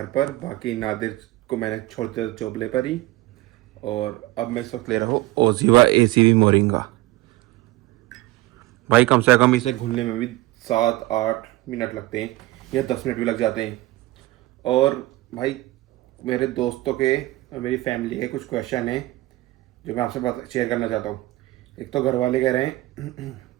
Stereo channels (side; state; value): left; quieter; 18.7 dB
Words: पर। बाकी नादिर को मैंने छोड़ दिया चोपले पर ही। और अब मैं इस वक्त ले रहा हूँ ओजीवा एसीवी मोरिंगा। भाई कम से कम इसे घुलने में भी 7-8 मिनट लगते हैं या 10 मिनट भी लग जाते हैं। और भाई मेरे दोस्तों के और मेरी फैमिली के कुछ क्वेश्चन हैं जो मैं आपसे शेयर करना चाहता हूँ। एक तो घर वाले कह रहे हैं